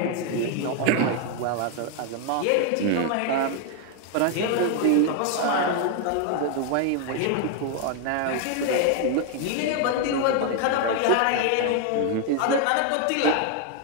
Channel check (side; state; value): both; different; correlation 0.01